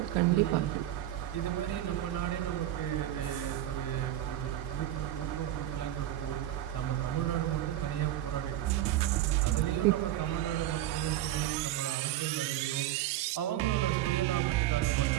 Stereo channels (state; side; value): quieter; left; 13.1 dB